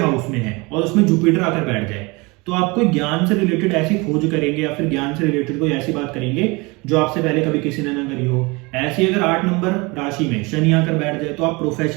में है और उसमें जुपिटर आकर बैठ जाए, तो आप कोई ज्ञान से रिलेटेड ऐसी खोज करेंगे या फिर ज्ञान से रिलेटेड कोई ऐसी बात करेंगे जो आपसे पहले कभी किसी ने ना करी हो। ऐसी अगर 8 नंबर राशि में शनि आकर बैठ जाए तो आप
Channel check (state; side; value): quieter; left; 26.0 dB